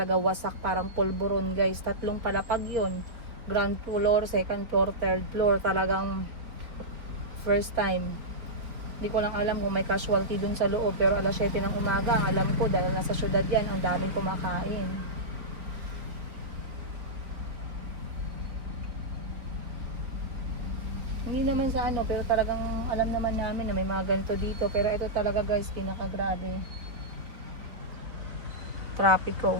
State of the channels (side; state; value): left; late; 3.9 ms